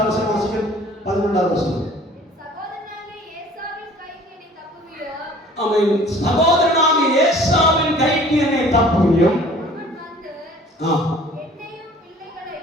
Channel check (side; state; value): both; normal; correlation 0.50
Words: வசனம் வாசிக்கிறோம். 11வது வசனம். அவன் சகோதரனாகிய ஏசாவின் கைக்கு என்னை தப்புவியும்,